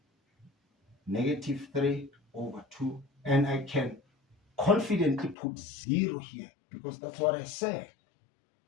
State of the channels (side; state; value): right; drops out; at 5.4 s